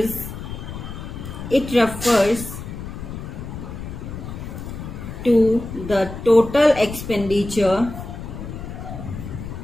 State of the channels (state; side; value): noise; left; rumble, 9 dB below the sound